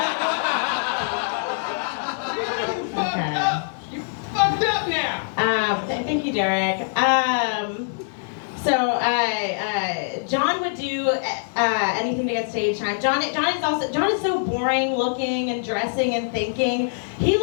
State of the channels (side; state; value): right; silent; digital silence